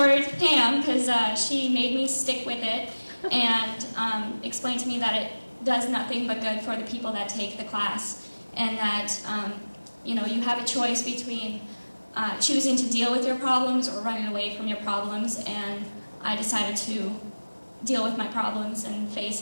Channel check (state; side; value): inverted; both; correlation -1.00